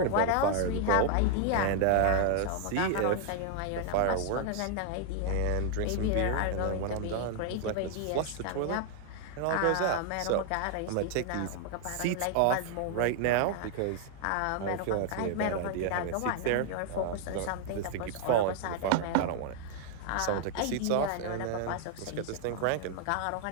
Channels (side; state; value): both; different; correlation 0.00